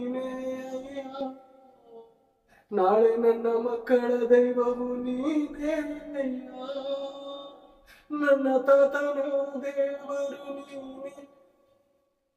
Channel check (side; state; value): both; identical; correlation 1.00